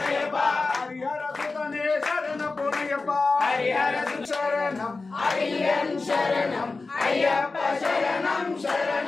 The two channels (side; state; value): right; quieter; 3.8 dB